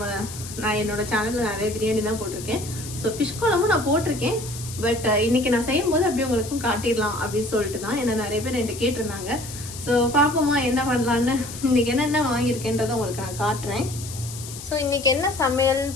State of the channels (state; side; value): noise; left; hiss, 12 dB below the sound